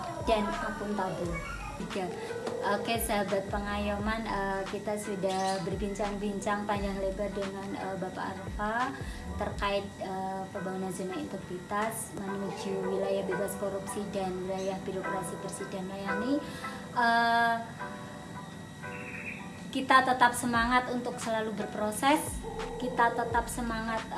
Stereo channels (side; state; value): both; identical; correlation 1.00